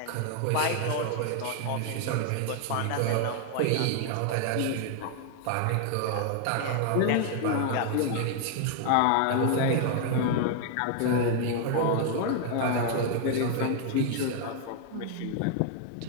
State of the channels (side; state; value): both; different; correlation 0.00